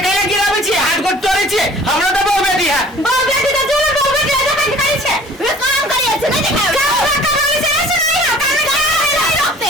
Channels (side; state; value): both; normal; correlation 0.49